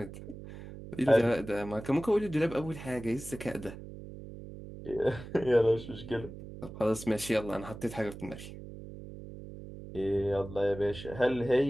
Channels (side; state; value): right; noise; hum, 13 dB below the sound